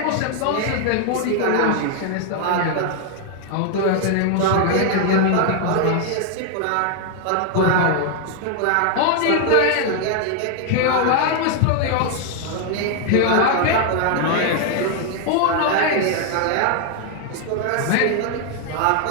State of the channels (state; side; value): different; both; correlation 0.00